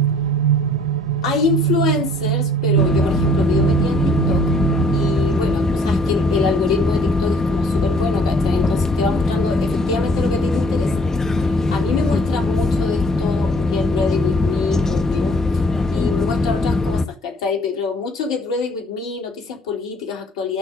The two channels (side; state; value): both; normal; correlation 0.57